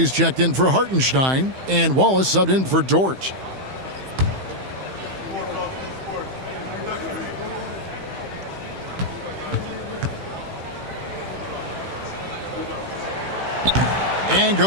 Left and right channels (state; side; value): late; left; 15 ms